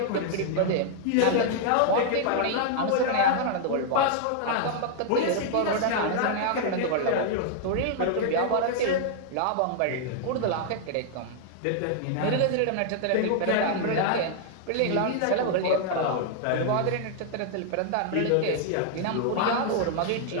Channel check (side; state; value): both; different; correlation 0.00